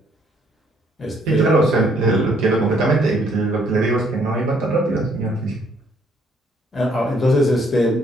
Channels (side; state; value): both; normal; correlation 0.67